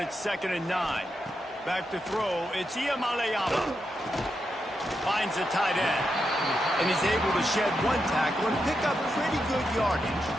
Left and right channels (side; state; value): both; normal; correlation 0.85